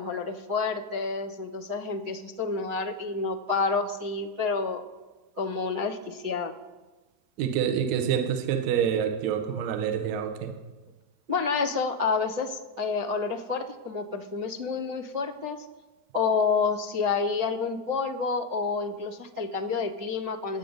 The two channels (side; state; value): left; late; 7.0 ms